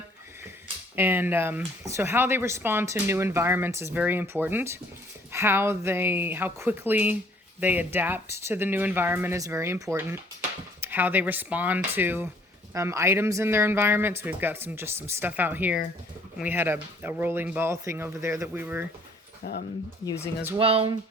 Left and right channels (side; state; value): both; normal; correlation 0.59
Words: And so how they respond to new environments is very important. How quickly they adapt to the new environment is very important. How they respond to items in their environment. So we've got some stuff out here. And we had a rolling ball thing over there that we were using as well.